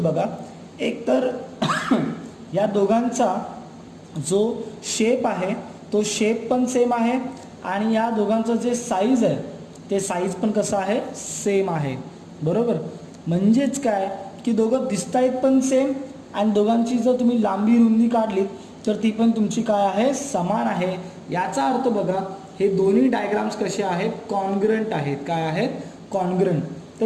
बघा. एक तर या दोघांचा जो शेप आहे तो शेप पण सेम आहे आणि या दोघांचं जे साईज आहे ते साईज पण कसं आहे, सेम आहे. बरोबर. म्हणजेच काय की दोघं दिसत आहेत पण सेम, आणि दोघांची जर तुम्ही लांबी रुंदी काढलीत तर ती पण तुमची काय आहे, समान आहे. याचा अर्थ बघा, हे दोन्ही डायग्राम्स कसे आहेत, कॉन्ग्रंट आहेत. काय आहेत, कॉन्ग्रंट.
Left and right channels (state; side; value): identical; both; correlation 1.00